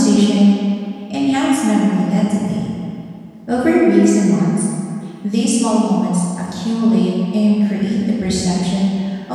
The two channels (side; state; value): both; identical; correlation 1.00